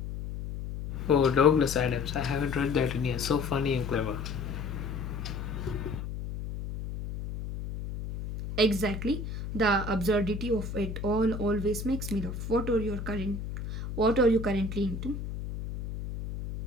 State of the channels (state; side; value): noise; left; hum, 6 dB below the sound